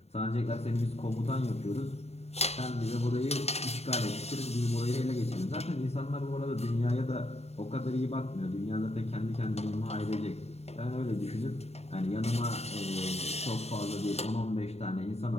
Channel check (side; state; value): right; late; 0.31 ms